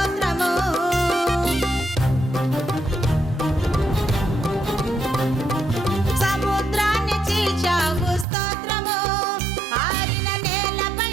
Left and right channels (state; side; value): drops out; left; at 8.2 s